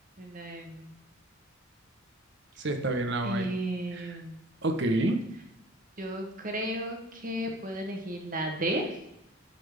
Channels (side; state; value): both; normal; correlation 0.48